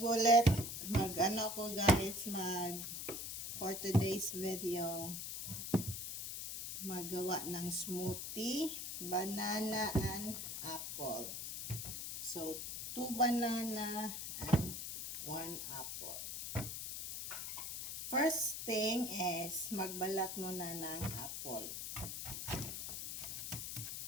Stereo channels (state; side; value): noise; left; hiss, 5 dB below the sound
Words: Mag-ano ako guys, for today's video. Magawa ng smoothie, banana and apple. So 2 banana and 1 apple. First thing is magbalat muna ng apple.